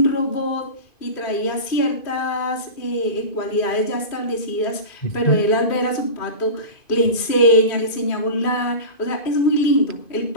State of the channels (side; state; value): right; late; 2.5 ms